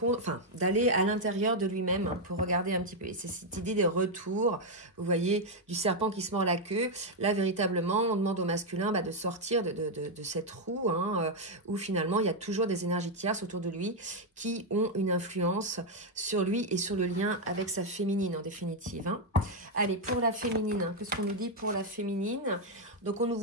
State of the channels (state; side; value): normal; both; correlation 0.01